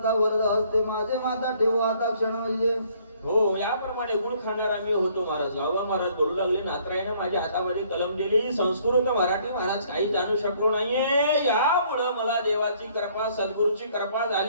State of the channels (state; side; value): inverted; both; correlation -0.63